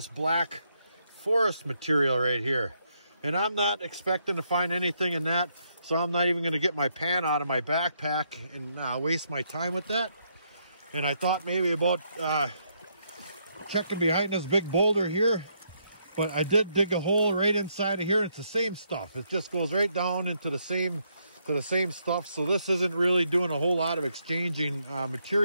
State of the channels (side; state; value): both; inverted; correlation -0.75